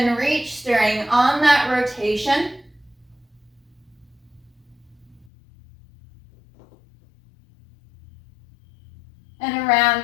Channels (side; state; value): right; drops out; at 5.3 s